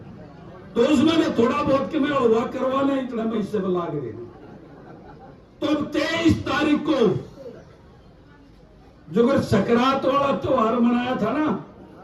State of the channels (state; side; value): identical; both; correlation 1.00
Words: तो उसमें थोड़ा बहुत के मैं हुआ करवा लें, इतना मैं इससे लाग रहे। तो 23 तारीख को जो अगर सकरात वाला त्योहार मनाया था ना,